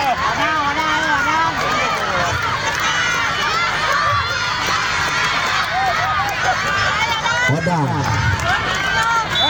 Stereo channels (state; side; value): identical; both; correlation 1.00